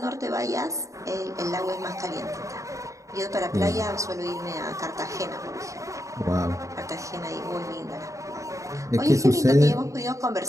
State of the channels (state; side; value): late; left; 0.15 ms